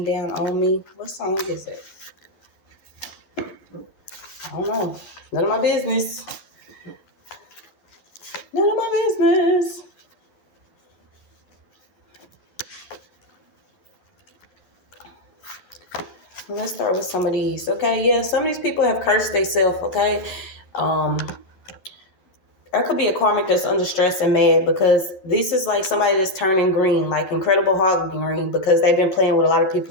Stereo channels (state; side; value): late; right; 11 ms